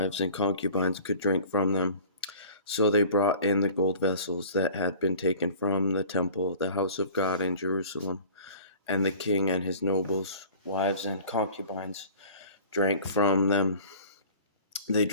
and concubines could drink from them. So they brought in the gold vessels that had been taken from the temple, the house of God in Jerusalem, and the king and his nobles, wives, and concubines drank from them. They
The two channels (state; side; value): inverted; both; correlation -0.46